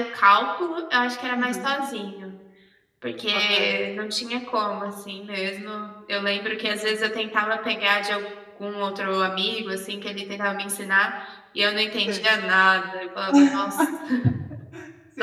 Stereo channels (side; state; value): both; identical; correlation 1.00